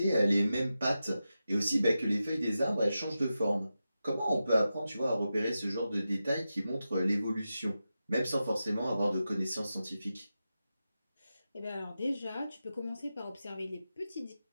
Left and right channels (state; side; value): inverted; both; correlation -0.91